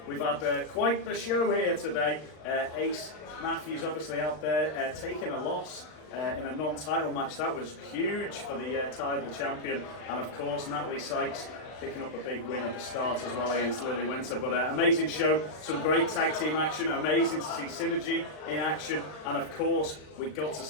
We've had quite the show here today. Ace Matthews obviously out there taking a loss in a non-title match. That was huge for the Tidal champion, and of course Natalie Sykes picking up a big win at the start as well against Lily Winter. But amazing show, some great tag team action, amazing to see Synergy in action, and of course we got to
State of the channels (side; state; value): right; late; 39 ms